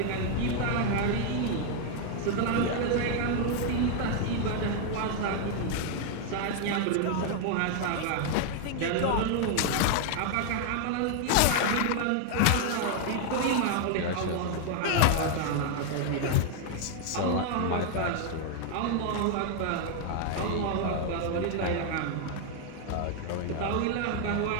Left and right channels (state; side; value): different; both; correlation 0.00